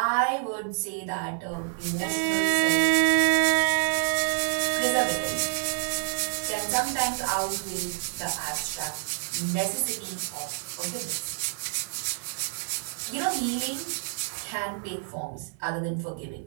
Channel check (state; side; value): silent; left; 60 dB below the other